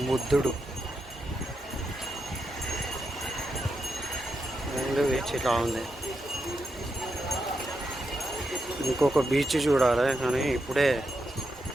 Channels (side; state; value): both; normal; correlation 0.85